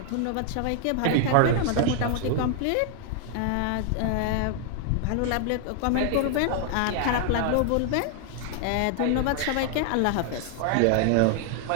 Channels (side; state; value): both; different; correlation 0.00